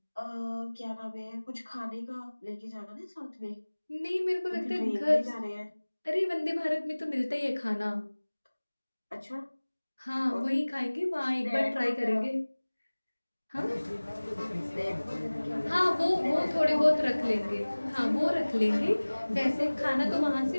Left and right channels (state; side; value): inverted; both; correlation -1.00